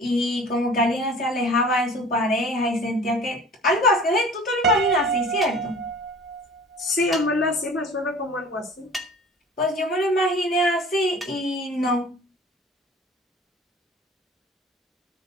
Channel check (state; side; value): normal; both; correlation 0.45